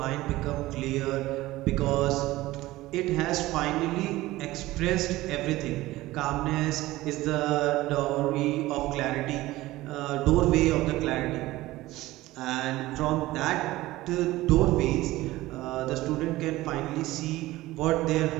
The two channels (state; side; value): quieter; left; 17.7 dB